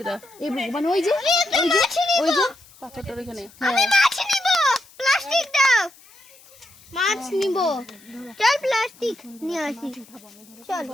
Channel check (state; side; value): noise; left; hiss, 25 dB below the sound